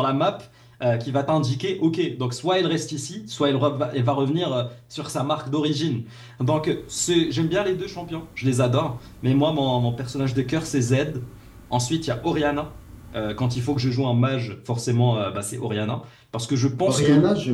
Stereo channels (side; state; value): both; identical; correlation 1.00